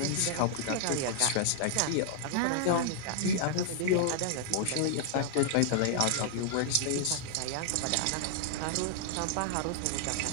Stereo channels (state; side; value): different; both; correlation 0.00